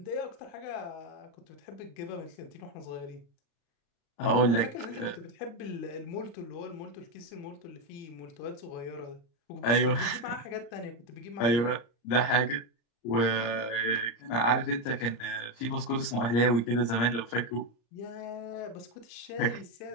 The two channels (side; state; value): right; late; 34 ms